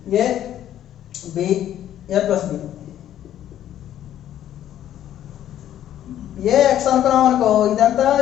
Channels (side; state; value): right; quieter; 11.5 dB